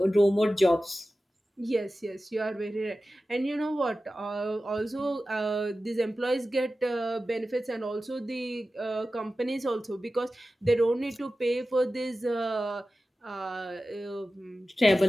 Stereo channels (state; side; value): normal; both; correlation 0.94